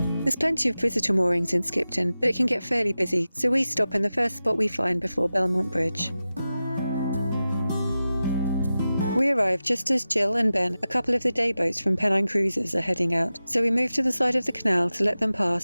There's plenty of visitor moorings in Skipton, but it can get fairly busy, so we stop in the first spot we find before Belmont Bridge. We arrive just as Jill and Ben, a couple of the day boats from Pennine Cruises, are heading out, so we move to the side of the canal to let them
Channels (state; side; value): inverted; both; correlation -0.94